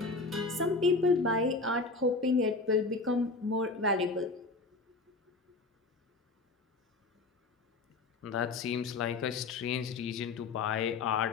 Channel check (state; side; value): quieter; right; 3.6 dB